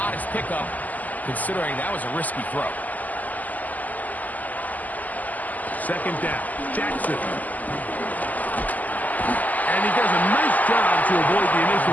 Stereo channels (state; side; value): late; right; 0.080 ms